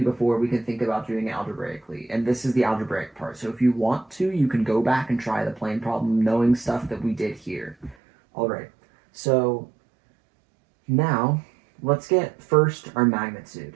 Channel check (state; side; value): drops out; left; at 8.0 s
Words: before we can think about doing it algebraically. And this is the algebraic part. So if you want to, you can go back and try the plane problem knowing stuff that we did here. All right. So now let's get first our